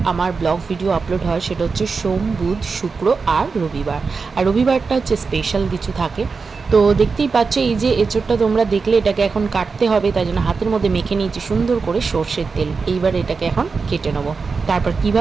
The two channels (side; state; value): left; quieter; 4.8 dB